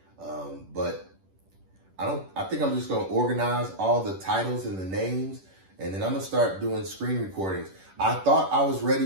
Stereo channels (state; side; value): late; left; 10 ms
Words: But I think I'm just going to organize all the titles and the names, and then I'm going to start doing screen recordings. I thought I was